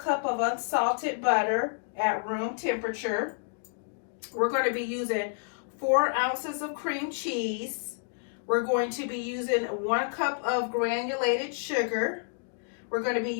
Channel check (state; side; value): silent; right; digital silence